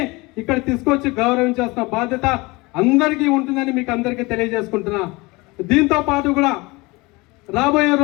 ఇక్కడ తీసుకొచ్చి గౌరవించాల్సిన బాధ్యత అందరికీ ఉంటుందని మీకు అందరికీ తెలియజేసుకుంటున్నా. దీంతో పాటు కూడా రాబోయే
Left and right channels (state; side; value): quieter; right; 23.9 dB